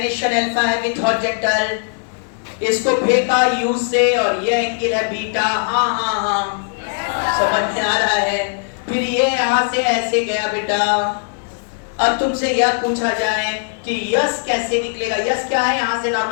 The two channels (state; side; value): silent; right; digital silence